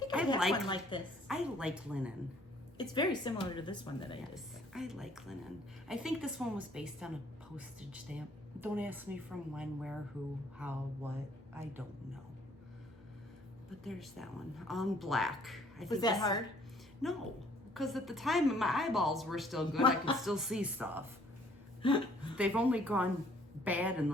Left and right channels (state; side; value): normal; both; correlation 0.61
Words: I I have like- one like this. I like linen. It's very similar to this one that I did. Yes, I like linen. I think this one was based on a postage stamp. Don't ask me from when, where, who, how, what. I don't know. But there's that one. On black. Was that hard? No, because at the time my eyeballs were still good. I could still see stuff. They've only gone bad in